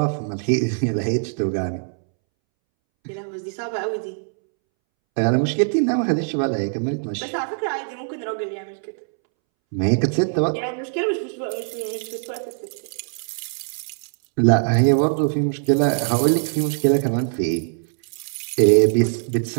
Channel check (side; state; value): left; silent; 64 dB below the other